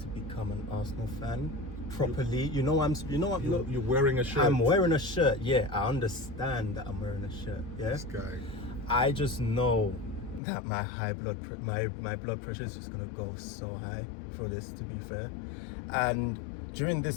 become an Arsenal fan properly. You're wearing a shirt. I'm wearing a shirt. Yeah, I understand that I'm wearing a shirt. Yeah, This guy. I just know that my my blood pressure is just gonna go so high for this, to be fair. And during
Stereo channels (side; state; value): right; drops out; at 10.4 s